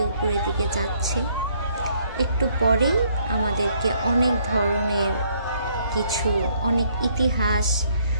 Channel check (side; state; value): both; inverted; correlation -0.67